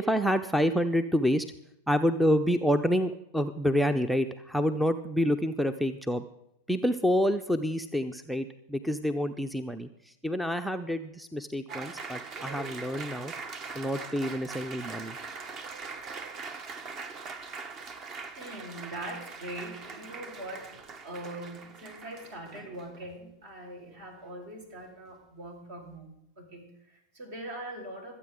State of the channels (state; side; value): normal; both; correlation 0.79